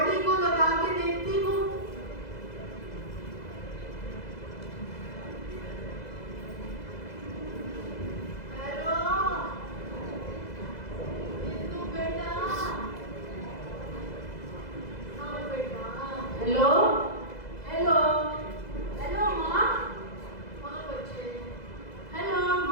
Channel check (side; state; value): right; late; 2.0 ms